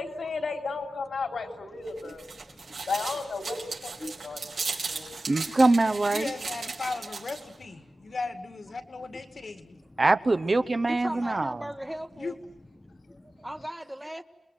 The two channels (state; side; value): normal; both; correlation 0.95